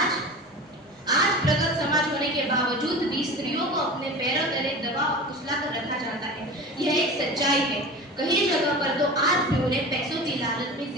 प्रगत समाज होने के बावजूद भी स्त्रियों को अपने पैरों तले दबा और कुचला कर रखा जाता है। यह एक सच्चाई है। कई जगह पर तो आज भी उन्हें पैसों की लालच में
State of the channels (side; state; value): both; normal; correlation 0.33